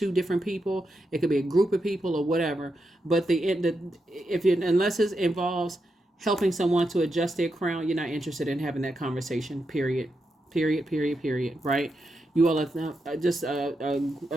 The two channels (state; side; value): normal; both; correlation 0.85